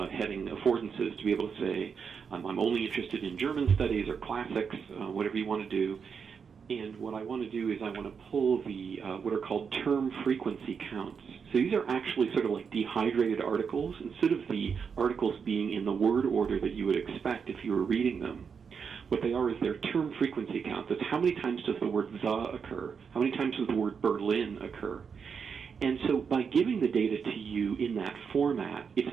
heading affordances to be able to say, I'm only interested in German studies or classics, whatever you want to do. And what I want to do is I want to pull the what are called term frequency counts. So these are actually sort of like dehydrated articles. Instead of the articles being in the word order that you would expect if you were reading them, what they are is their term frequency counts. That's how many times does the word the occur? How many times does the word Berlin occur? And so by giving the data to you in that format, it's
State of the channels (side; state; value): left; quieter; 6.3 dB